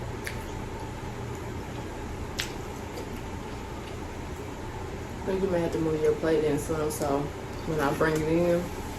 I think you may have to move your plate in some, so when I bring it in,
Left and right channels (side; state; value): both; identical; correlation 1.00